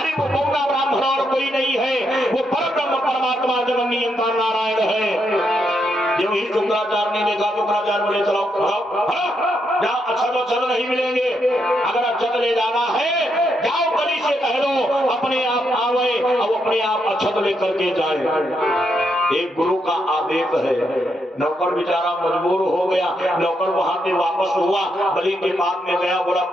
वो बौना ब्राह्मण और कोई नहीं है, वो परब्रह्म परमात्मा जगन नियंता नारायण है। जब ही शुक्राचार्य ने देखा, शुक्राचार्य बोले चलो जाओ, अक्षत नहीं मिलेंगे, अगर अक्षत ले जाना है जाओ बलि से कह दो अपने आप आवे और अपने आप अक्षत लेकर के जाए। एक गुरु का आदेश है। नौकर बेचारा मजबूर हो गया। नौकर वहां से वापस हुआ, बलि के पास में गया, बोला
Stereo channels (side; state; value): both; normal; correlation 0.79